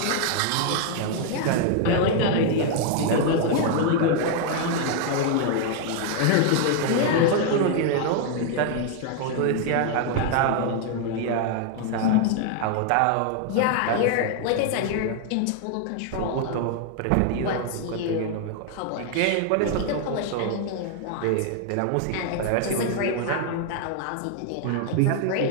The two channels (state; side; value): different; both; correlation 0.00